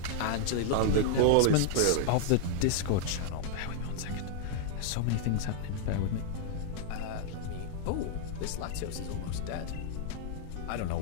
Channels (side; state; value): both; different; correlation -0.01